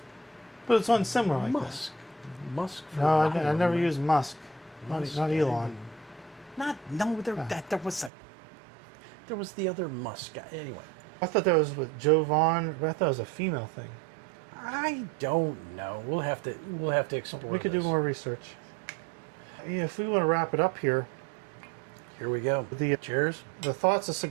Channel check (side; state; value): left; drops out; at 8.1 s